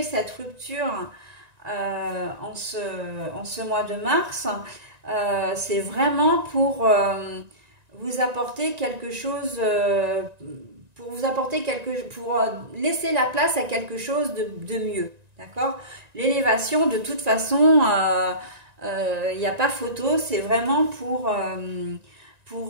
cette rupture en ce mois de mars, c'est vraiment pour vous apporter quelque chose, pour laisser la place à quelque chose de mieux, d'accord? L'élévation, de toute façon, il n'y a pas photo, c'est vraiment pour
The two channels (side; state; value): left; late; 1.9 ms